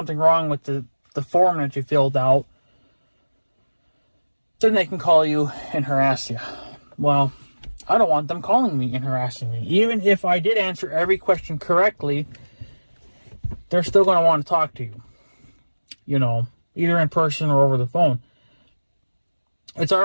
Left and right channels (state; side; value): inverted; both; correlation -1.00